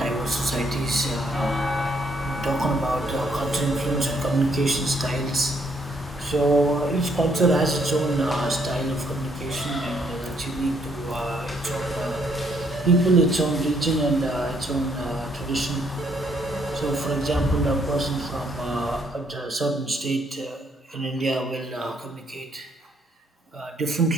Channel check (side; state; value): both; normal; correlation 0.69